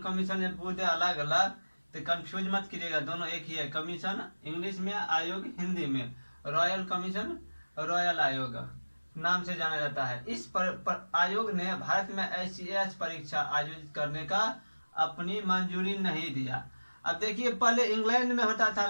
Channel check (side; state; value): both; inverted; correlation -1.00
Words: कमीशन ये पूरे अलग अलग, तो कंफ्यूज मत कीजिएगा, दोनों एक ही है। कमीशन इंग्लिश में, आयोग हिंदी में। रॉयल कमीशन रॉयल आयोग नाम से जाना जाता है। इस आयोग ने भारत में ICS परीक्षा आयोजित करने का अपनी मंजूरी नहीं दिया। अब देखिए, पहले इंग्लैंड में होता था,